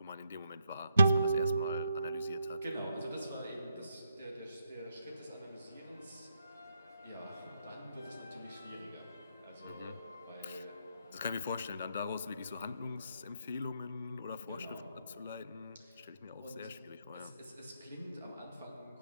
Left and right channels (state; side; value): inverted; both; correlation -0.80